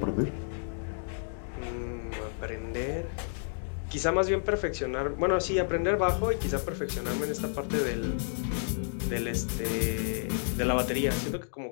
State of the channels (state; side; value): silent; right; digital silence